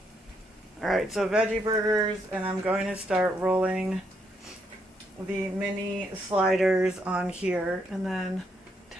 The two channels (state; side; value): normal; both; correlation 0.76